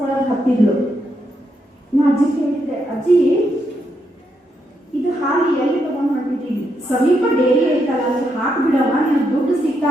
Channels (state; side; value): normal; both; correlation 0.80